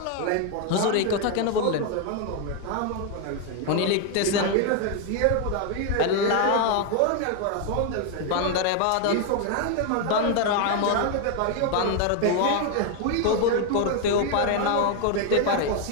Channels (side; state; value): both; different; correlation 0.01